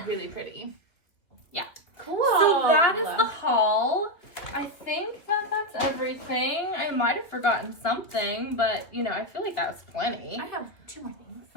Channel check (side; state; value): right; late; 2.9 ms